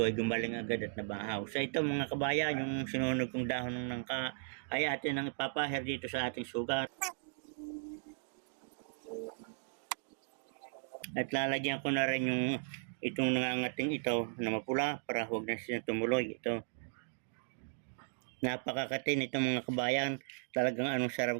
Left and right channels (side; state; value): left; silent; digital silence